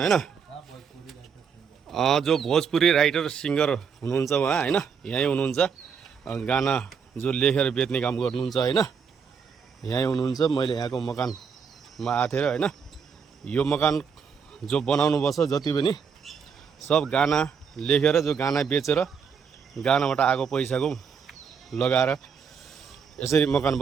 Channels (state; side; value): quieter; left; 6.5 dB